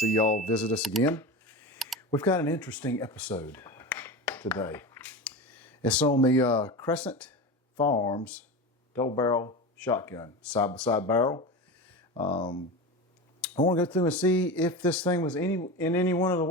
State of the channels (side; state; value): both; normal; correlation 0.25